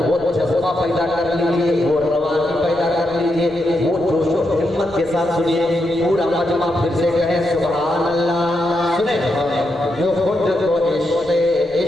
वो जज्बा पैदा कर लीजिए, वो रवानी पैदा कर लीजिए, वो जोश और हिम्मत के साथ सुनिए। पूरा मजमा फिर से कहे सुभान अल्लाह। सुने जो खुद को इश्क़े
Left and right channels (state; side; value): noise; left; rumble, 26 dB below the sound